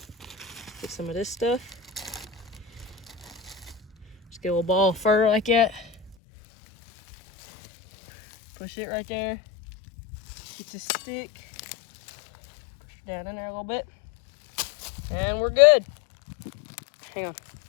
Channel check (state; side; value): drops out; right; at 6.2 s